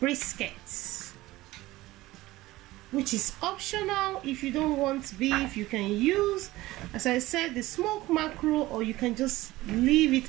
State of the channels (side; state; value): left; quieter; 17.9 dB